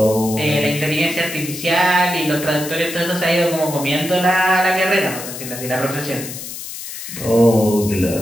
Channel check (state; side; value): noise; left; hiss, 10 dB below the sound